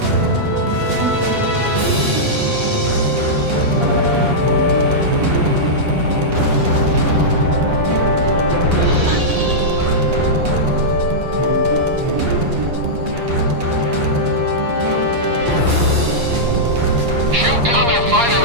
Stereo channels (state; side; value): late; left; 8.5 ms